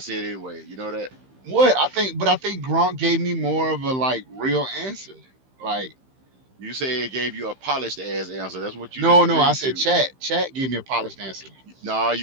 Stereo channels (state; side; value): late; left; 15 ms